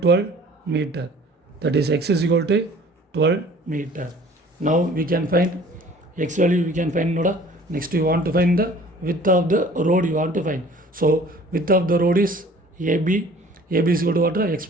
12 meter. That is x is equal to 12 meter. Now we can find x value, we can find noda. Next you want to find the width of the road you want to find. So width of the road is AB. AB is equal to what? X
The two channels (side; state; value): both; normal; correlation 0.50